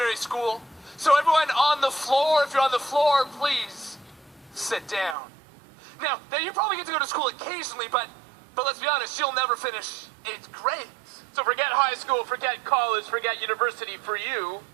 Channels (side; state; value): left; drops out; at 5.2 s